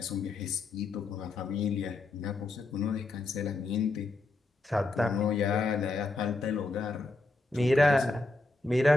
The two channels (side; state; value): right; quieter; 3.3 dB